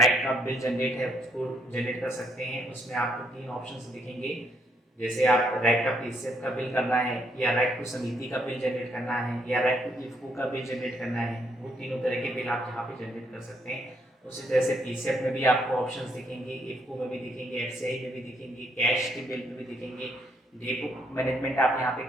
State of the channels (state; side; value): normal; both; correlation 0.72